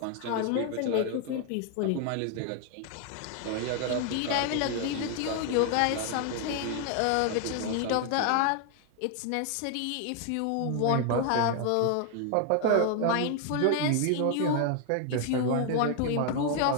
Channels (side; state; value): both; different; correlation 0.01